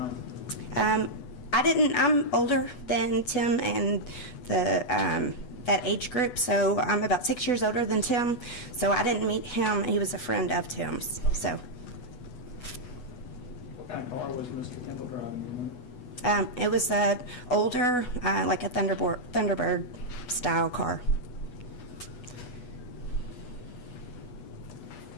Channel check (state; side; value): late; right; 8.2 ms